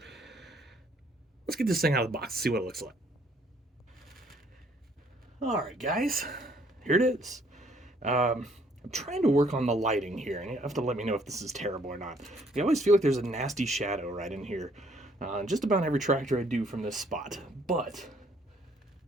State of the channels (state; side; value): normal; both; correlation 0.64